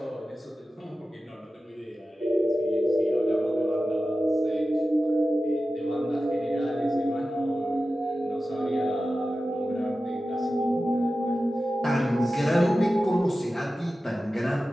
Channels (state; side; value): normal; both; correlation 0.94